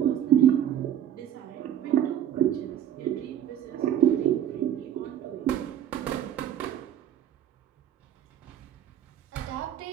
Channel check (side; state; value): left; quieter; 10.7 dB